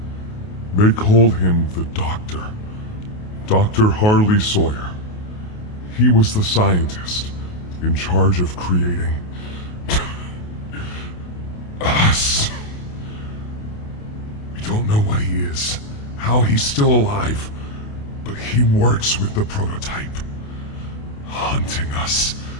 they called him the Doctor. Dr. Harley Sawyer. He was the scientist in charge of creating us. We don't know what he is, how he's still alive, but he works with the prototype. Hunting us,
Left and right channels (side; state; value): right; late; 28 ms